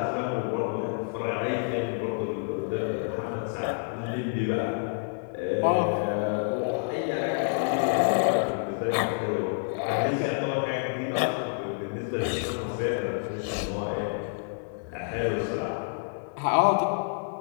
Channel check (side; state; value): right; silent; 59 dB below the other